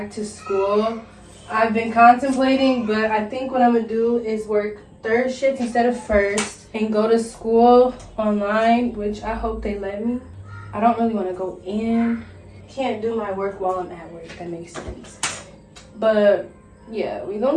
to school. I've been contemplating, but I think what I'm gonna do is work third shift instead of first and go to school online, which I hope they let me. I don't really want to go in. Can't do my work while I'm at work, if that makes sense. But yeah, we're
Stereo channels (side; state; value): both; identical; correlation 1.00